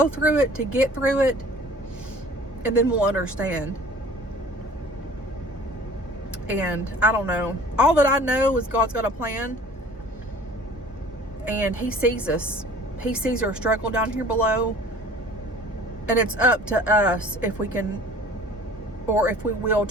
through it to get through it. And then we'll understand. And I don't know. All that I know is God's got a plan. And He sees us. He sees our struggle down here below. And it's up to us if we can, or if we will,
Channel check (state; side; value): normal; both; correlation 0.48